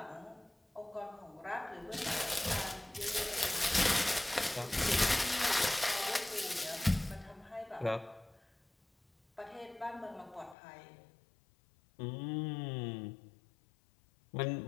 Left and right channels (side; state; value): right; drops out; at 10.6 s